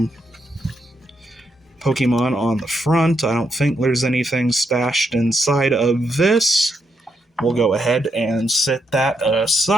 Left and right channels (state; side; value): normal; both; correlation 0.80